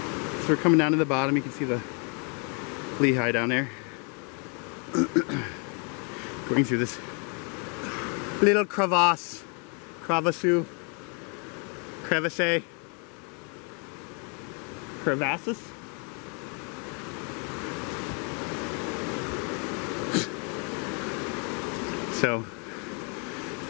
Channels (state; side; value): quieter; right; 37.0 dB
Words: we're coming down to the bottom. You can see the Lehigh down there. Going through this little crevasse. Crevasses. Crevasses? So,